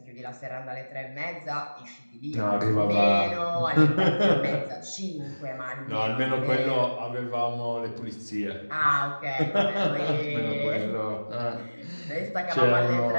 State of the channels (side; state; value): both; inverted; correlation -1.00